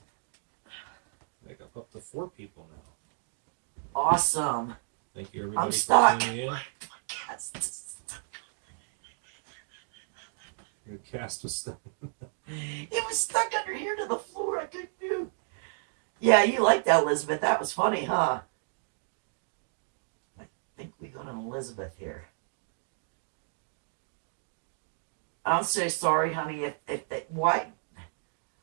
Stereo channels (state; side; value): silent; left; digital silence